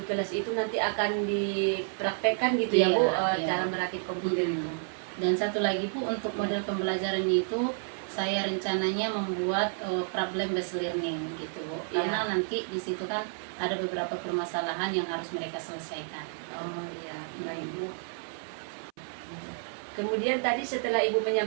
kelas itu nanti akan dipraktekkan gitu ya Bu, cara merakit komputer itu. Dan satu lagi Bu, untuk model pembelajaran itu saya rencananya membuat problem based learning gitu Bu, karena nanti di situ kan ada beberapa permasalahan yang harus mereka selesaikan. Oh iya, baik Bu. Kemudian tadi setelah Ibu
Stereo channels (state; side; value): silent; left; 58 dB below the other